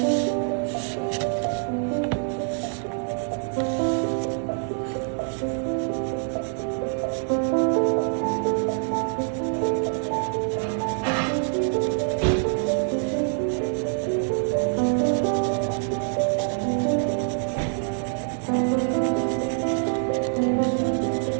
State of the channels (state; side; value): silent; left; 58 dB below the other